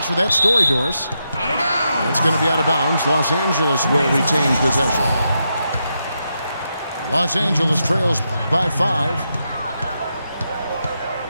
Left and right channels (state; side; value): inverted; both; correlation -0.84